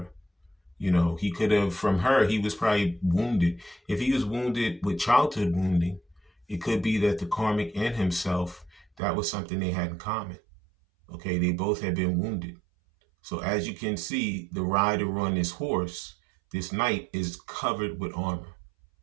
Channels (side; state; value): left; drops out; at 8.8 s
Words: He could have, from her, he was probably wounded. If he was wounded with childhood wounding, it could be that the karmic and himself, that was something they had in common. Okay, they both had been wounded. So as you can see, the rider on this horse, this knight, is covered with armor.